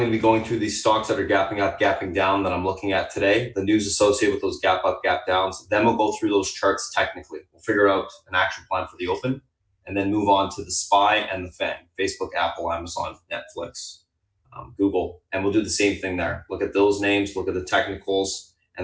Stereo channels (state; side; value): identical; both; correlation 1.00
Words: to be going through these stocks that are gapping up, gapping down that I'm looking at today, the news associated with those gap up, gap downs. Then we'll go through those charts technically. We'll figure out an action plan for the open and then move on to the SPY and the FANG, Facebook, Apple, Amazon, Netflix, Google. And we'll do the same thing there. Look at those names, look at the technicals,